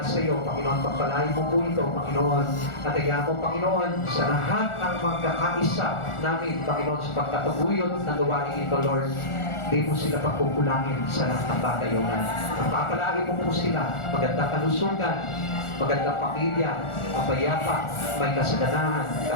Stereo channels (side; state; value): right; late; 1.4 ms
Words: sa iyo, Panginoon, pagpalagi mo po ito, Panginoon. At kaya po, Panginoon, sa lahat ng magkakaisa namin, Panginoon, sa pagkataguyod ng gawain ito, Lord, di mo sila pagkukulangin sa lahat ng bagay, O God. Pagpapalagi mo po sila, magandang kalusugan, magandang pamilya, mapayapa, may kasaganahan,